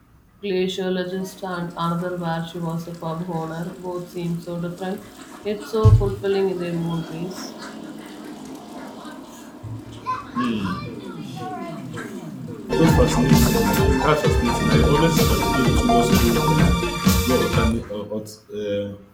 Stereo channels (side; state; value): both; identical; correlation 1.00